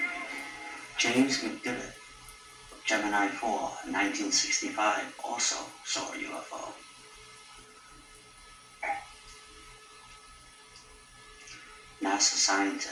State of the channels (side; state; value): both; identical; correlation 1.00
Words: James McDivitt, Gemini 4, 1965, also saw a UFO. NASA